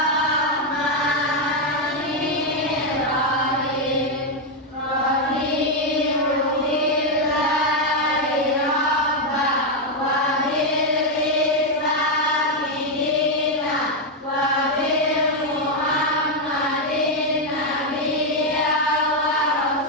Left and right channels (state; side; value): normal; both; correlation 0.02